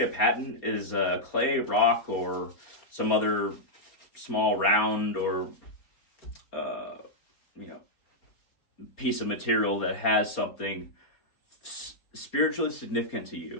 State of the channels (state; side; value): late; right; 4.3 ms